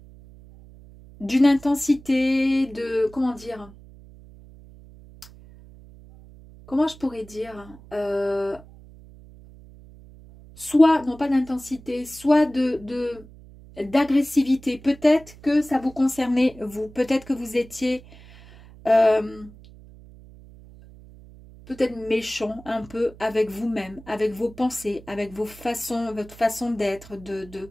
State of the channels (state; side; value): noise; right; hum, 21 dB below the sound